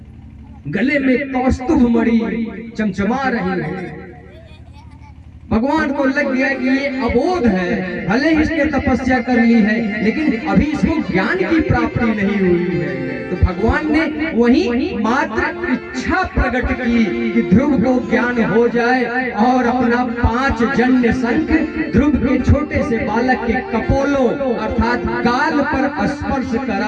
गले में कौस्तुभ मणि चमचमा रही है। भगवान को लग गया कि ये अबोध है, भले ही इसने तपस्या कर ली है लेकिन अभी इसको ज्ञान की प्राप्ति नहीं हुई है। तो भगवान ने वही मात्र इच्छा प्रकट की कि ध्रुव को ज्ञान हो जाए और अपना 5 जन्य शंख ध्रुव के छोटे से बालक के कपोलों अर्थात गाल पर स्पर्श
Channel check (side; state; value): both; identical; correlation 1.00